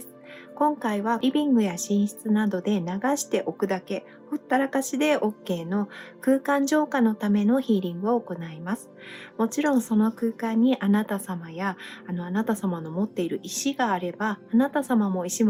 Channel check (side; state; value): both; identical; correlation 1.00